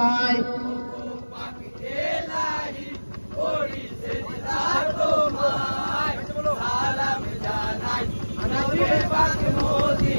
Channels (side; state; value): both; inverted; correlation -1.00